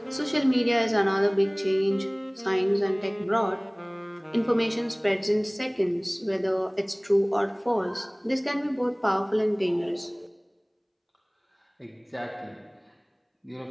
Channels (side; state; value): both; identical; correlation 1.00